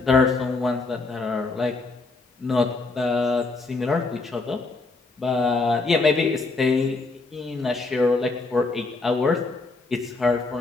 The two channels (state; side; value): quieter; right; 3.6 dB